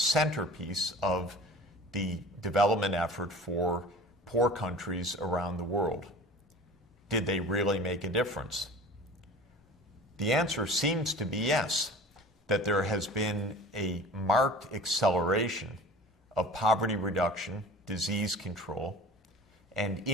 of the development effort for poor countries around the world. Did they really make a difference? The answer seems to be yes, that there has been a marked acceleration of poverty reduction, disease control, and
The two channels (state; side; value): normal; both; correlation 0.41